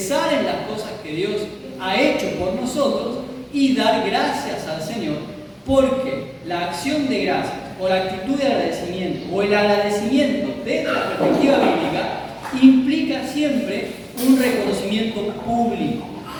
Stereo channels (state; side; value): identical; both; correlation 1.00